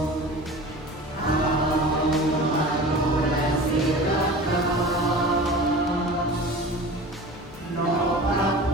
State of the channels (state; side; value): normal; both; correlation 0.37